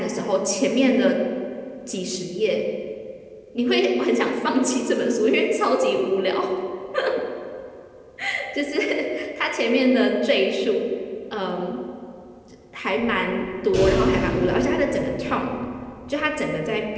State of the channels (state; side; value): identical; both; correlation 1.00